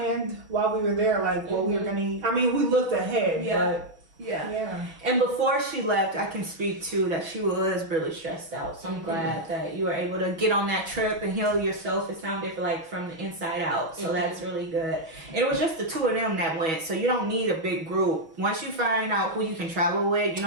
while we were there, like, what we were going to eat. I mean, we looked ahead, but... Yeah. And before she left, I can speak to that she was really stressed out. So I'm glad that you were able to get on that trip and heal yourself. It sounded like from the inside out. So that's really good. And it was just the two of them that went. So you don't need a big group. Once you find out who you can travel with, you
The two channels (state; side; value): late; left; 6.2 ms